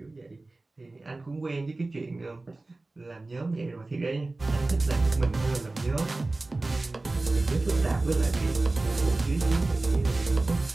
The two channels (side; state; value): left; quieter; 3.1 dB